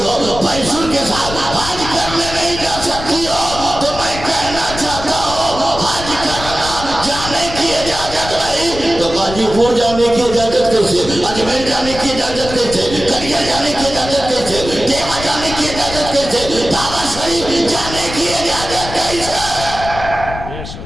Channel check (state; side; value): noise; left; rumble, 10 dB below the sound